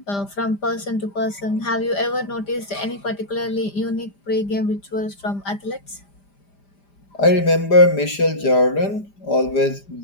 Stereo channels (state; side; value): late; right; 5.0 ms